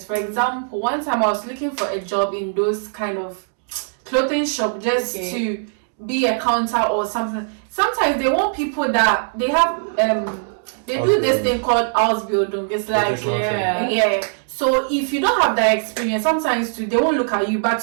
For example, one time I was looking for a job in those kind of clothing shop just to be a counter or something. Sometimes they want people that they have they do this thing called Ausbildung. It's like so if you don't have that experience, sometimes too, they won't look at you, but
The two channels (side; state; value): left; silent; digital silence